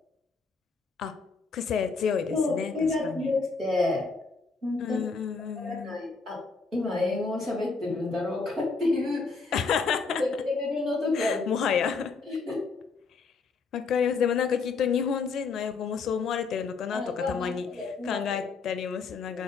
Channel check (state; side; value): quieter; right; 4.5 dB